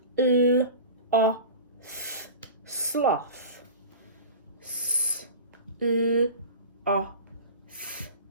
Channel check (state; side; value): inverted; both; correlation -0.35